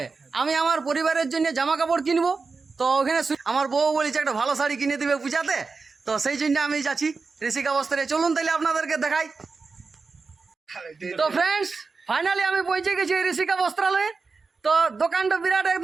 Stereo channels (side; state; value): left; quieter; 4.4 dB